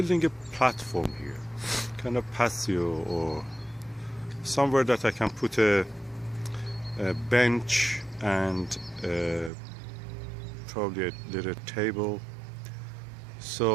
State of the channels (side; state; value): left; drops out; at 9.5 s